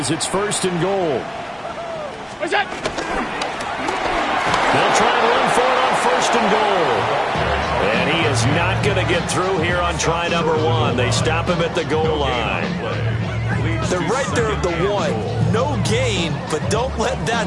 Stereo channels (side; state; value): both; identical; correlation 1.00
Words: it's 1st and goal. What's that? They'll try and run for it on 1st and goal. And he is not going to get through here on try number 1. They stop him at the goal line. They're right there at the 1. No gain, but don't let